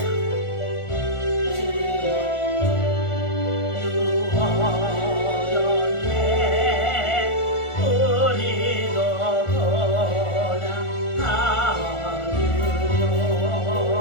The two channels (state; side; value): late; right; 1.4 ms